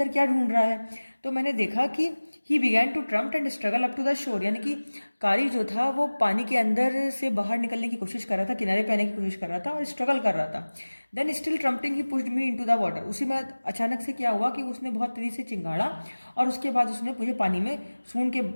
क्या ढूंढ रहा है। तो मैंने देखा कि he began to tramp and struggle up to the shore, यानी कि कारी जो था वो पानी के अंदर से बाहर निकलने की कोशिश कर रहा था, किनारे पे आने की कोशिश कर रहा था और स्ट्रगल कर रहा था। Then still trumpeting he pushed me into the water. उसी में अचानक से क्या हुआ कि उसने बहुत तेजी से चिंगाड़ा और उसके बाद उसने मुझे पानी में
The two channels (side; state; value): both; inverted; correlation -1.00